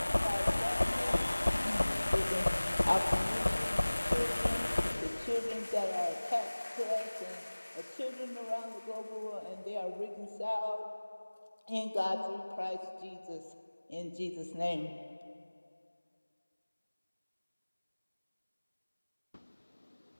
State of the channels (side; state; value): both; inverted; correlation -1.00